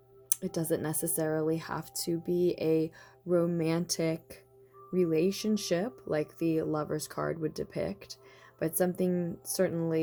It doesn't necessarily have to be a romantic relationship like the Lover's card would depict, but something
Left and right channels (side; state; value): both; identical; correlation 1.00